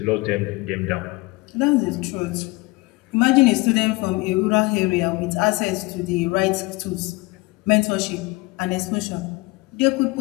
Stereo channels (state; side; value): quieter; right; 23.8 dB